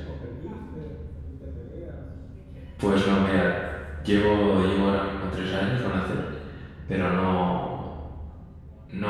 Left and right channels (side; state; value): both; identical; correlation 1.00